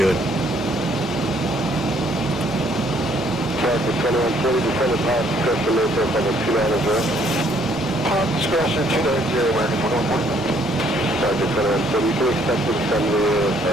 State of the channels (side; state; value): both; normal; correlation 0.65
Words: Discretion 290, American 114. Sergeant Federal, so you can expect to send the